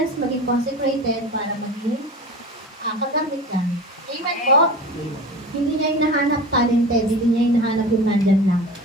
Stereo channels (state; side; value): normal; both; correlation 0.33